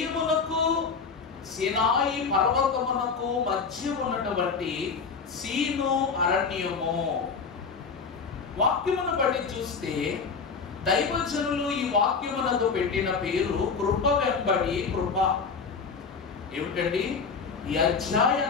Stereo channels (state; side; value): quieter; right; 5.3 dB